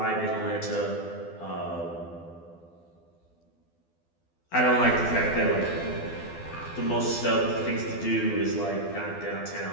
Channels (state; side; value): late; right; 12 ms